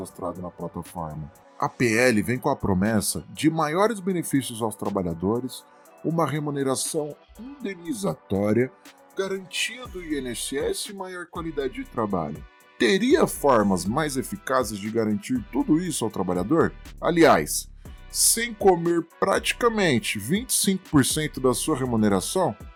na plataforma? A PL vem com a promessa de maiores benefícios aos trabalhadores, uma remuneração indenizatória, garantia do INSS e maior qualidade de trabalho. Teria formas mais eficazes de garantir tudo isso ao trabalhador? Aliás, sem comer praticamente 25% da sua remuneração?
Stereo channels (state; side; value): identical; both; correlation 1.00